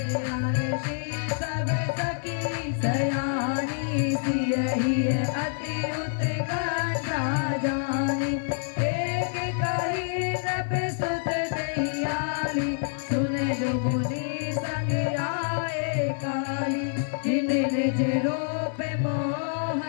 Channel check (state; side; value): silent; right; 60 dB below the other